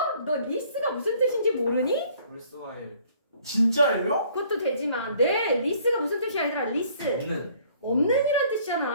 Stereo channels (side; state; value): both; inverted; correlation -0.59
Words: 너 리스가 무슨 뜻인지 모르니? worthwhile. 진짜예요? 그것도 되지만 네 리스가 무슨 뜻이야 얘들아 리스 없는. 없는이란